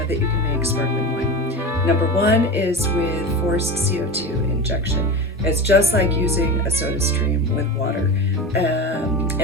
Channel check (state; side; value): normal; both; correlation 0.26